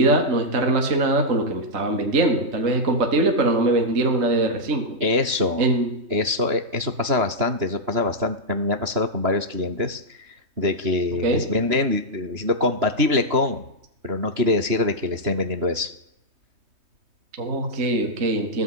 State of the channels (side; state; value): left; late; 3.2 ms